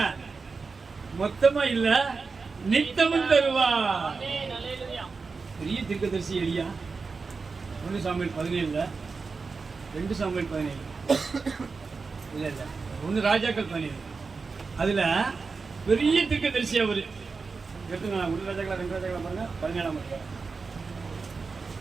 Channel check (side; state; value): left; quieter; 4.6 dB